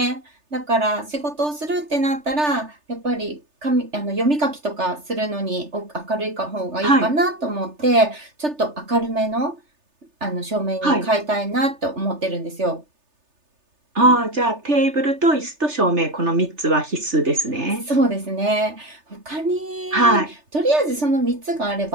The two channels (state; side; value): late; left; 3.3 ms